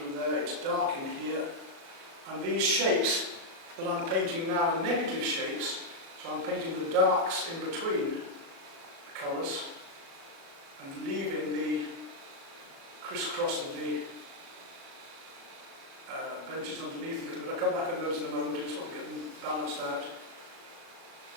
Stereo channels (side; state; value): left; late; 37 ms